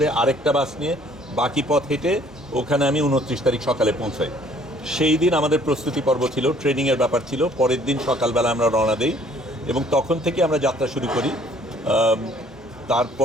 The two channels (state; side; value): normal; both; correlation 0.58